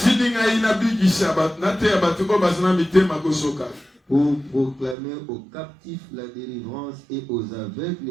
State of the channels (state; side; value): drops out; left; at 5.0 s